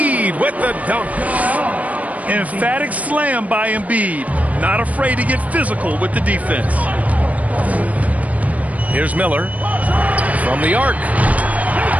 with the dunk. Emphatic slam by Embiid. Not afraid to get physical with the defense. Here's Miller. From the arc.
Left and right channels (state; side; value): late; left; 0.070 ms